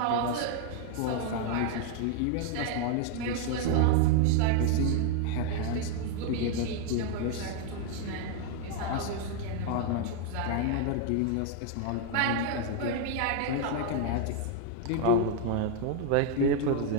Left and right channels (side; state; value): both; different; correlation 0.00